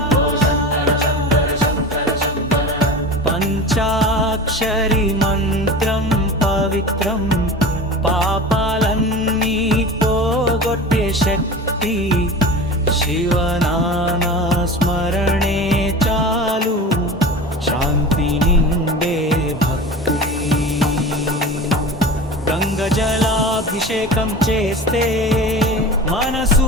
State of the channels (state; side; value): normal; both; correlation 0.33